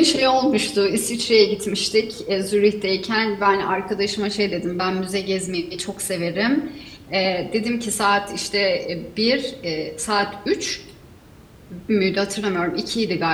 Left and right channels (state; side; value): identical; both; correlation 1.00